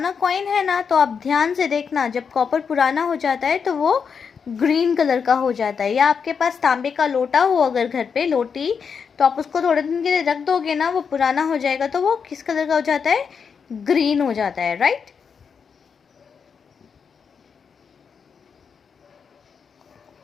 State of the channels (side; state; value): right; quieter; 6.3 dB